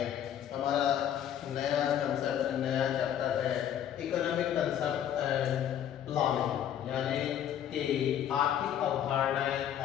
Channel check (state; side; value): quieter; right; 10.1 dB